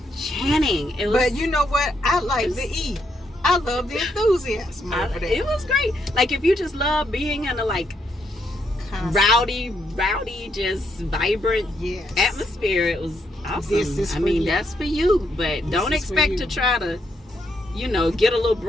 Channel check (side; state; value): both; normal; correlation 0.77